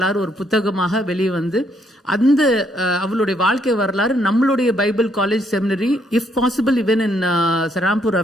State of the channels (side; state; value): both; normal; correlation 0.71